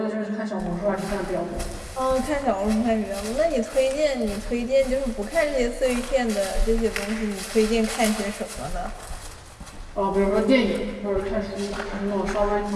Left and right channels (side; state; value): both; identical; correlation 1.00